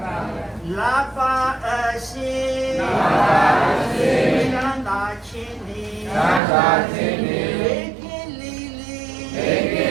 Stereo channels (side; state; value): left; drops out; at 6.4 s